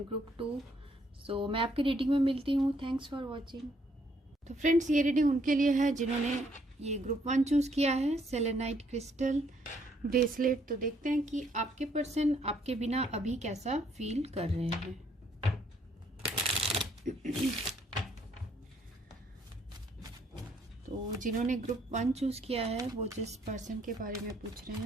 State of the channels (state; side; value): normal; both; correlation 0.68